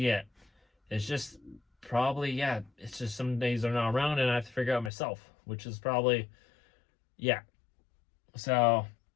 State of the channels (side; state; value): right; drops out; at 4.9 s